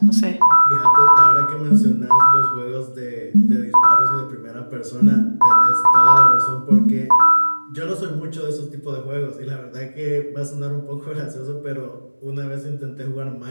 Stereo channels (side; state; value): both; inverted; correlation -1.00